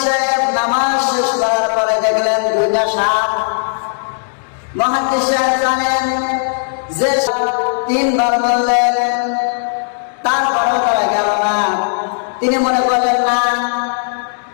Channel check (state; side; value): silent; right; digital silence